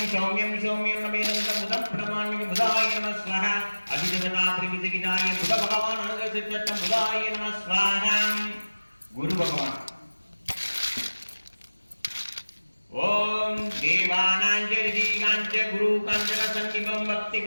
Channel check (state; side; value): inverted; both; correlation -1.00